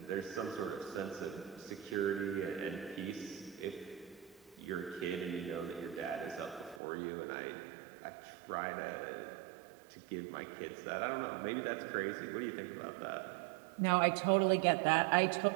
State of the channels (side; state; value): left; drops out; at 6.8 s